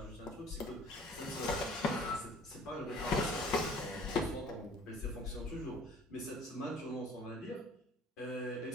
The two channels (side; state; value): both; normal; correlation 0.51